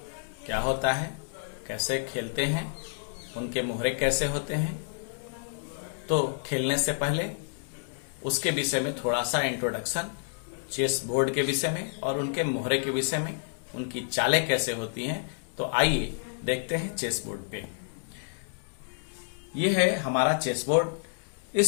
क्या होता है, कैसे खेलते हैं, उनके मोहरे कैसे होते हैं। तो खेलने से पहले उसके विषय में थोड़ा सा इंट्रोडक्शन, चेस बोर्ड के विषय में और उनके मोहरे के विषय में, उनकी चालें कैसे होती हैं। तो आइए देखते हैं चेस बोर्ड पे। ये है हमारा चेस बोर्ड।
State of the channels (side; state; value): right; silent; digital silence